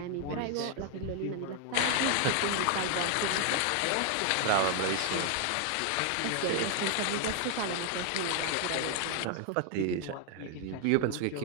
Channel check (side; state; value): both; different; correlation 0.00